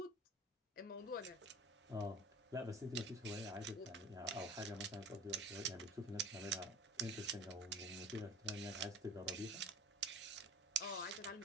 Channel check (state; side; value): normal; both; correlation 0.40